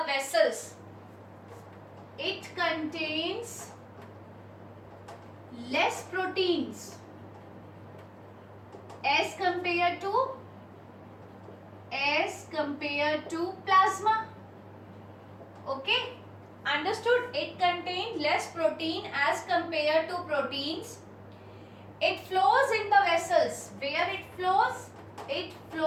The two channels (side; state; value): both; identical; correlation 1.00